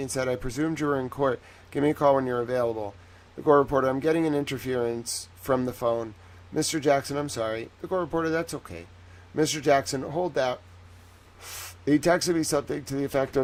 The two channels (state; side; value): identical; both; correlation 1.00